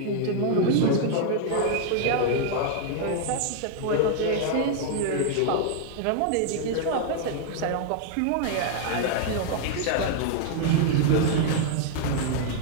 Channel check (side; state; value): both; different; correlation 0.00